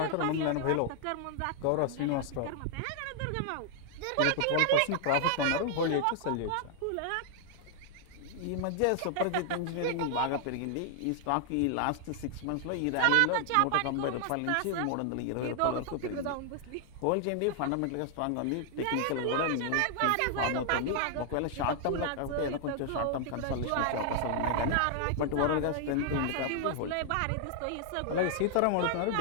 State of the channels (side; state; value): both; different; correlation 0.00